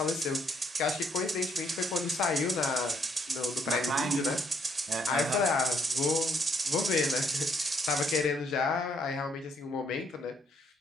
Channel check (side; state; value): both; normal; correlation 0.70